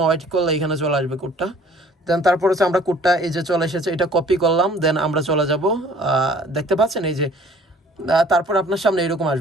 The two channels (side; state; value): both; normal; correlation 0.53